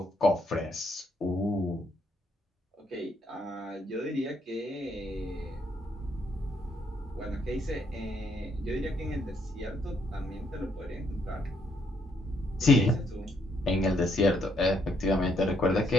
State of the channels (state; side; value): normal; both; correlation 0.73